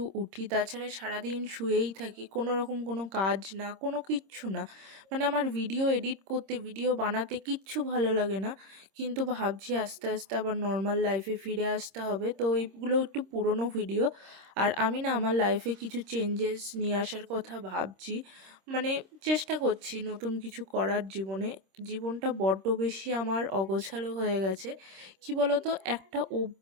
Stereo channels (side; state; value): left; late; 26 ms